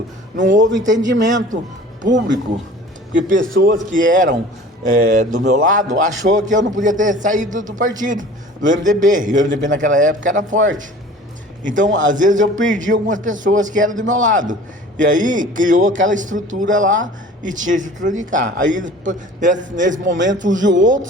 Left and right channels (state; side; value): normal; both; correlation 0.44